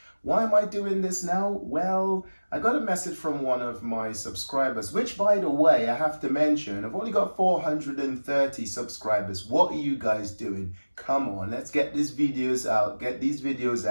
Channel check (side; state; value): both; inverted; correlation -1.00